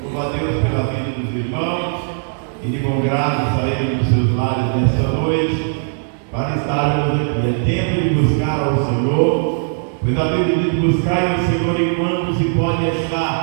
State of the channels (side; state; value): left; silent; digital silence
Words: Louvo a Deus pela vida dos irmãos e de bom grado saíram dos seus lares nesta noite para estarmos aqui. É tempo de buscar ao Senhor, pois a Bíblia diz: buscai o Senhor enquanto se pode